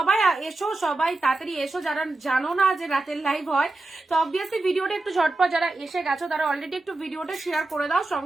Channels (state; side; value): quieter; left; 3.0 dB